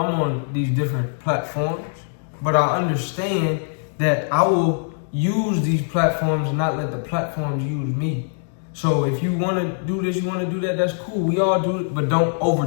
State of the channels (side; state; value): right; silent; digital silence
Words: on these different platforms, but I understand that I will use these platforms and not let the platforms use me. So if you want to do this, you want to do that, that's cool. We all do it, but don't